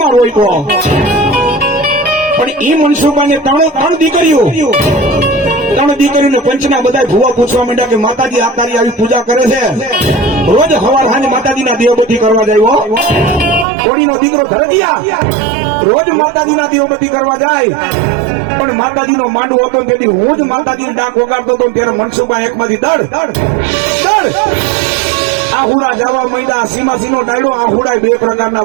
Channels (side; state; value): left; drops out; at 13.7 s